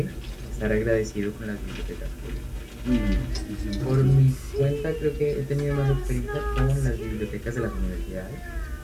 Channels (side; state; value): both; identical; correlation 1.00